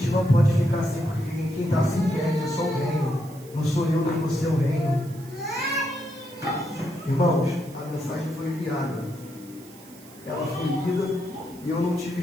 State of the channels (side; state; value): right; noise; hiss, 22 dB below the sound